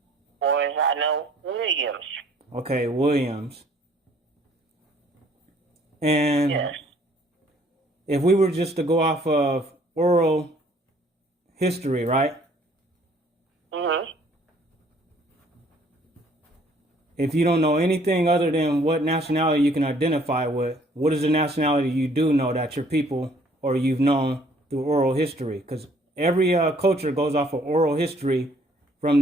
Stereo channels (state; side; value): normal; both; correlation 0.60